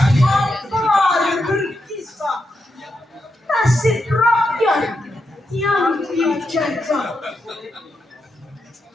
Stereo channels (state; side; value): normal; both; correlation 0.85